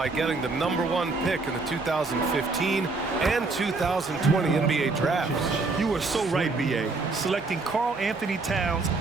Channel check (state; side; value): quieter; left; 3.7 dB